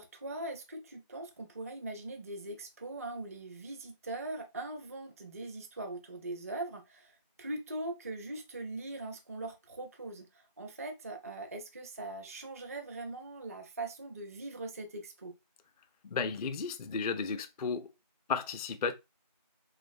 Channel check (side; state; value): both; inverted; correlation -0.36